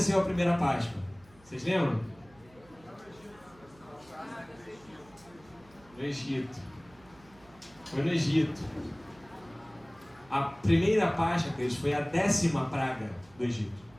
a primeira Páscoa? Vocês lembram? No Egito. Foi no Egito. A primeira Páscoa, queridos, foi a 10ª praga do Egito.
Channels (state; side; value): noise; right; hum, 27 dB below the sound